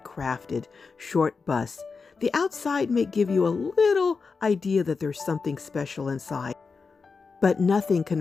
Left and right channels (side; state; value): right; quieter; 4.8 dB